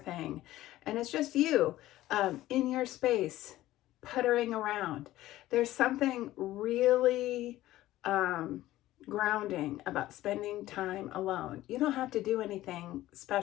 And it's just you in your space, puttering around. There's something really grounding about spending time alone. You don't have to do anything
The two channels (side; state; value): right; quieter; 15.4 dB